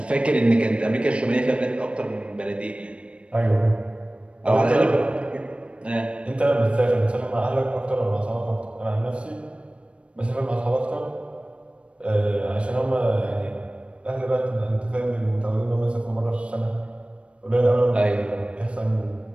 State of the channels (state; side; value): late; left; 0.060 ms